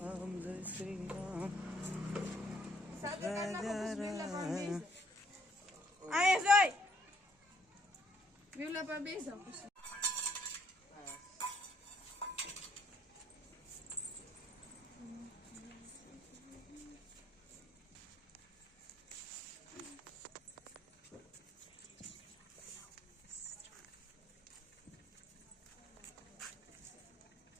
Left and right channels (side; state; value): both; normal; correlation 0.68